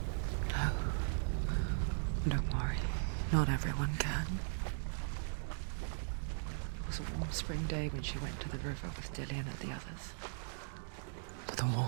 No. Don't worry. Not everyone can. It was a warm spring day when she went to the river with Dillian and the others. To the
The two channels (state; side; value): silent; left; digital silence